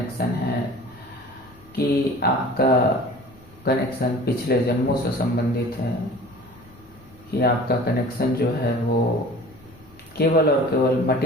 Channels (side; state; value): both; normal; correlation 0.43